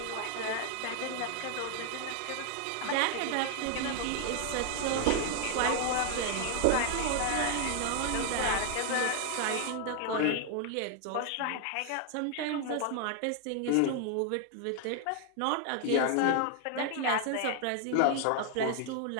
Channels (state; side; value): different; both; correlation 0.00